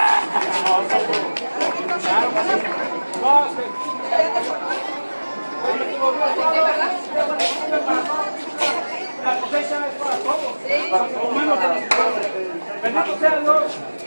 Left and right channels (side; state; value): both; inverted; correlation -1.00